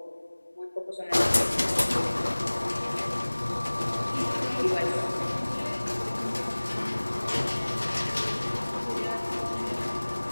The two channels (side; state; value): both; inverted; correlation -1.00